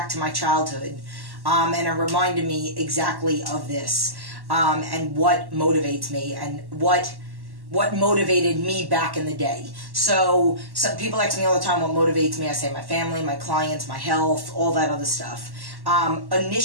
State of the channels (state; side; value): late; left; 1.1 ms